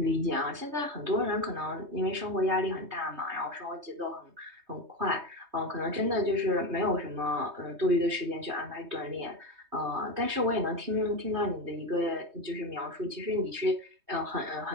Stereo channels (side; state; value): left; late; 3.2 ms